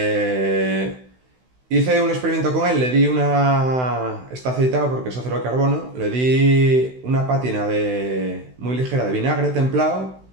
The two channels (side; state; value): left; late; 16 ms